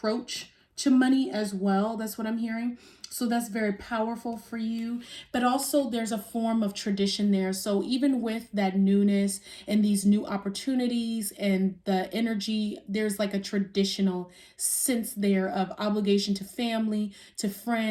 to money as well. That's what I'm hearing. So that's very powerful for you. But also there's a form of tradition there. So even with that newness and these new opportunities and the energy, there's like a traditional sense there of obligation to family, to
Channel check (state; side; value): identical; both; correlation 1.00